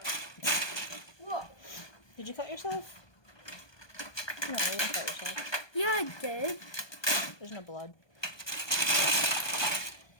Whoa. Did you cut yourself? No, you didn't cut yourself. Yeah, I did. There's no blood.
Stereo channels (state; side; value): late; right; 1.2 ms